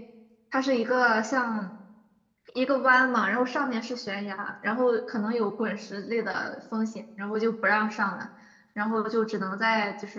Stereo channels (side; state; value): both; identical; correlation 1.00